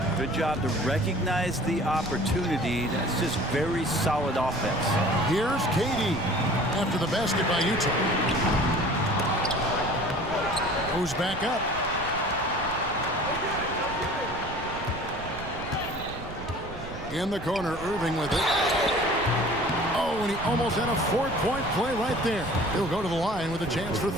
Good job to recognize the opportunity. That's just very solid offense. Here's KD after the basket by Utah. Goes back up. In the corner, Irving with it. Oh, and he almost had a 4-point play right there. He'll go to the line with a chance for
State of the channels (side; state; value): right; noise; rumble, 12 dB below the sound